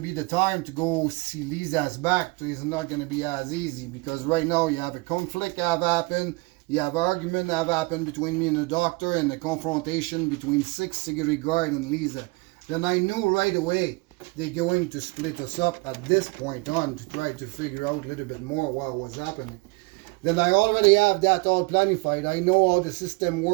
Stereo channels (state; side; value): quieter; left; 26.5 dB